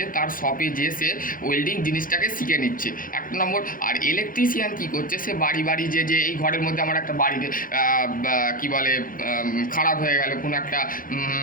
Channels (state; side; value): late; right; 0.40 ms